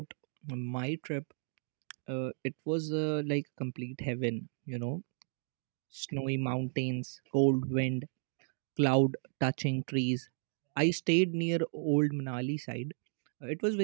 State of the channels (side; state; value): left; silent; digital silence